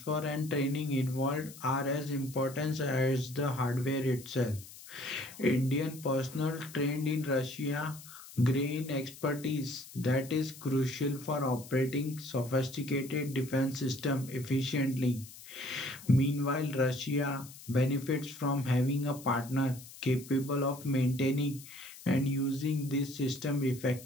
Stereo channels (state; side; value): noise; left; hiss, 17 dB below the sound